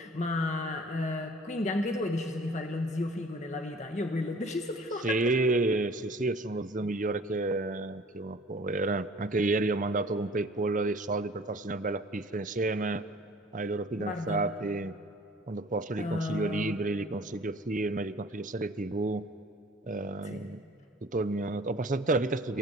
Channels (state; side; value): normal; both; correlation 0.49